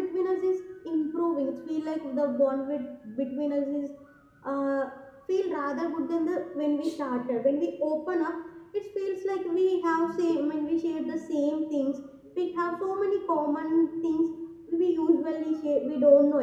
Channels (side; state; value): both; identical; correlation 1.00